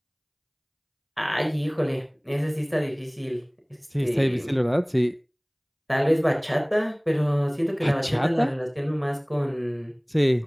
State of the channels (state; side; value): identical; both; correlation 1.00